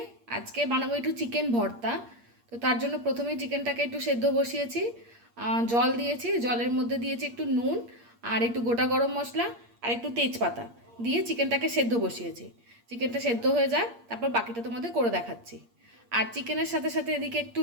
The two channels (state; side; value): late; left; 8.5 ms